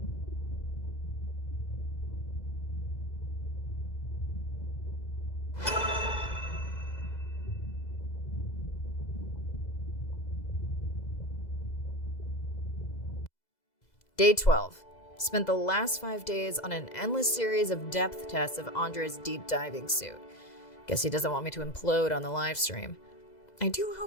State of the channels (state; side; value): late; right; 2.0 ms